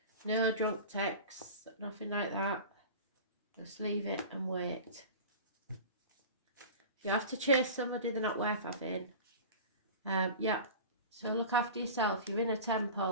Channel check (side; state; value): both; inverted; correlation -0.35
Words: No drunk texts, nothing like that. Just leave it and wait. If you have to chase somebody, they're not worth having. Yeah, so look after yourself. You're in a